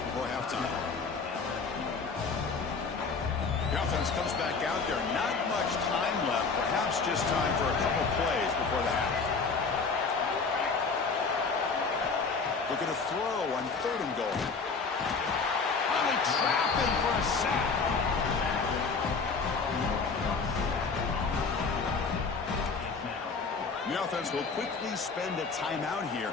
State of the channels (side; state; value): right; quieter; 4.7 dB